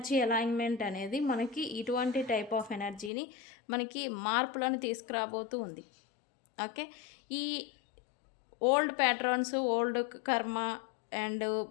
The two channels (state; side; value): drops out; right; at 3.1 s